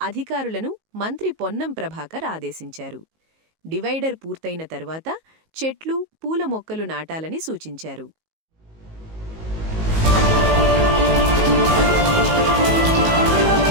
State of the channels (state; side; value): late; left; 19 ms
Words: అధికారులను మంత్రి పొన్నం ప్రభాకర్ ఆదేశించారు. డివైడర్ పూర్తయిన తర్వాత చెట్లు, పూల మొక్కలు నాటాలని సూచించారు.